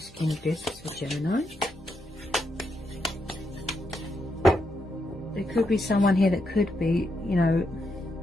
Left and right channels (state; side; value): normal; both; correlation 0.81